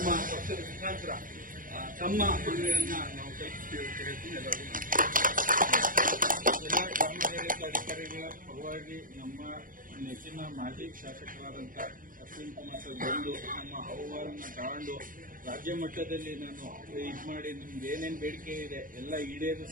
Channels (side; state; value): left; late; 0.40 ms